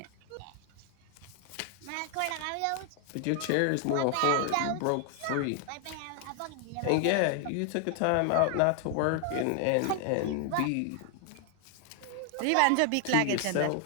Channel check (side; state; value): both; different; correlation 0.00